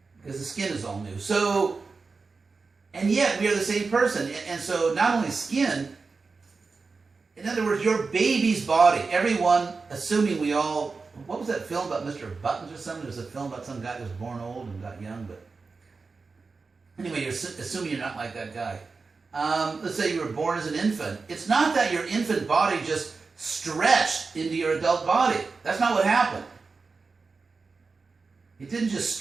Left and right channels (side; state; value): left; quieter; 4.4 dB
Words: Because the skin is all new. So, and yet we are the same person. And so not only skin, in other words, your baby's body, everyone, assuming we all, what was that film about Mr. Buttons or something? There was a film about some guy who was born old and got young, but anyway, you're assuming you're not like that guy. Let's say you were born as an infant. It's not that your infant body just stretched into your adult body. That's not what happened. It didn't just